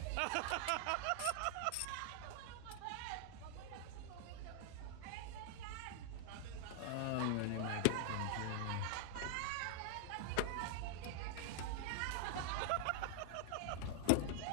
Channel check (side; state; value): both; different; correlation 0.00